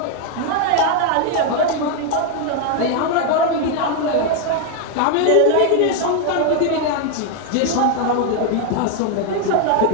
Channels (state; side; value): different; both; correlation 0.00